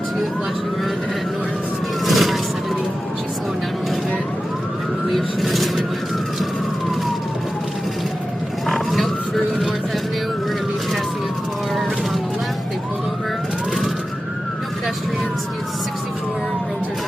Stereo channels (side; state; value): both; normal; correlation 0.93